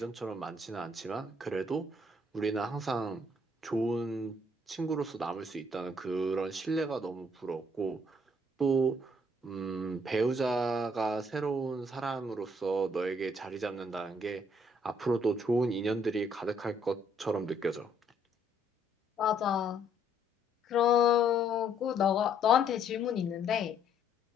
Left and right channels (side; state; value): both; normal; correlation 0.67